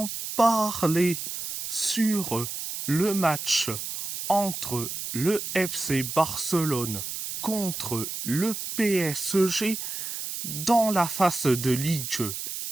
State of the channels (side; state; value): right; noise; hiss, 6 dB below the sound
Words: parler sur le match entre le FC Barcelone contre le PSG dans la phase de